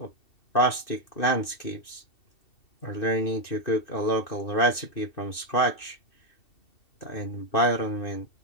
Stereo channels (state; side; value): late; right; 2.7 ms